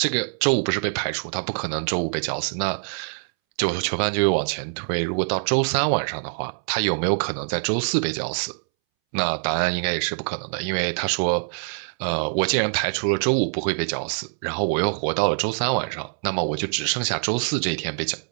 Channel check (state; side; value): silent; left; 62 dB below the other